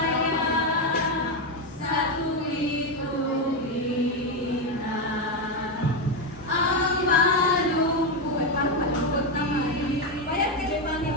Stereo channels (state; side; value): normal; both; correlation 0.08